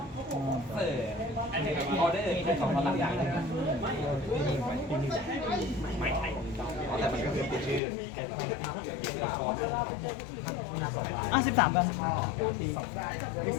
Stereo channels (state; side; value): drops out; right; at 7.8 s